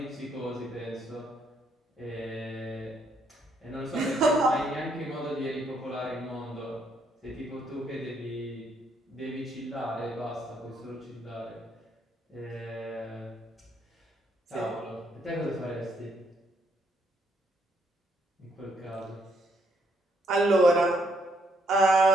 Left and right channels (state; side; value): normal; both; correlation 0.73